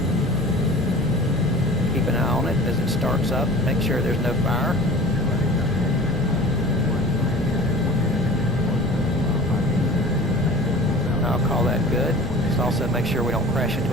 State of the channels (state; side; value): normal; both; correlation 0.41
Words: Keep an eye on it as it starts up. Make sure there's no fire. I'll call that good. Just also make sure we don't crash